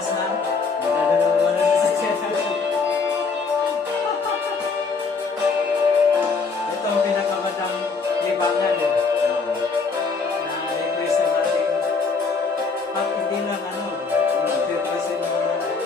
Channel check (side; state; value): right; quieter; 4.7 dB